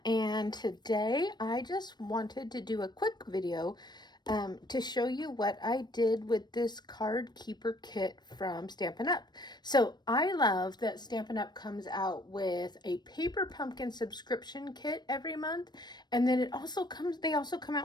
and today I just wanted to do a quick video to show you what I did with this card keeper kit from Stampin' Up. So I love that Stampin' Up comes out with a paper pumpkin subscription kit every month, and then they also come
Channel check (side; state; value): right; late; 0.21 ms